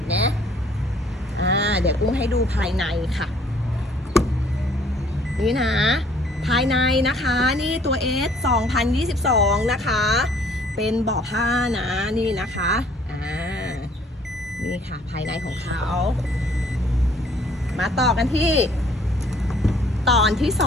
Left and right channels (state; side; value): normal; both; correlation 0.59